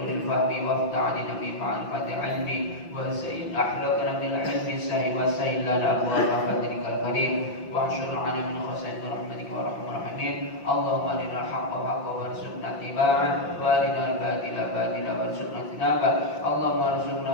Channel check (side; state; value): right; late; 5.8 ms